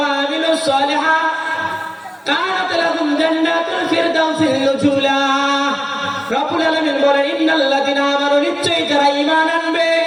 আমিলুস সালিহাত কানাত লাহুম জান্নাতুল ফিরদাউসিল নুজুলা। রব্বুল আলামিন বলেন ইন্নাল্লাযীনা আমানু নিশ্চয়ই যারা ঈমান আনবে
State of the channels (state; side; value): identical; both; correlation 1.00